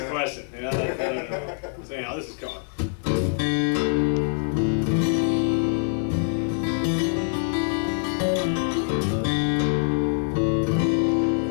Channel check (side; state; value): right; silent; 62 dB below the other